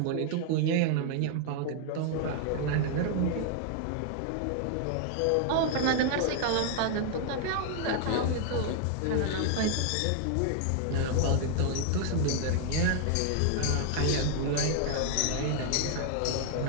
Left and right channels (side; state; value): both; different; correlation 0.00